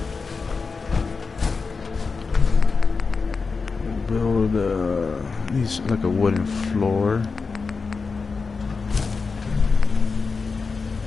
Needs like a wooden floor.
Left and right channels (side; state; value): right; quieter; 4.6 dB